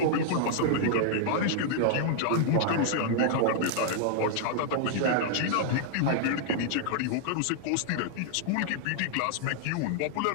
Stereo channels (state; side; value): different; both; correlation -0.01